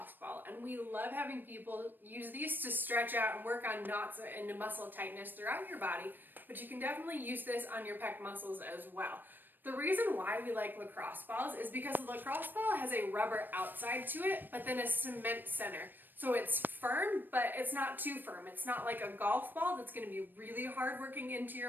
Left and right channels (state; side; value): late; left; 0.093 ms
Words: ball, and we love having people use these to stretch out and work on knots and muscle tightness throughout your body, but you can definitely use this on your pec muscles as well. The reason why we like lacrosse balls is because the lacrosse ball has a rubber outside to it, but then a cement center. So it's firm, but it's not too firm. It's not like a golf ball that's going to be really hard working into